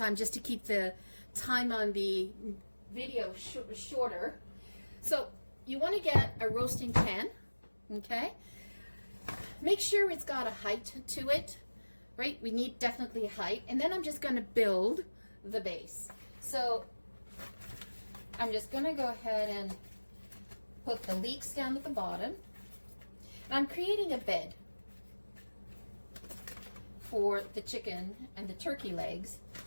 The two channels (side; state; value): both; inverted; correlation -1.00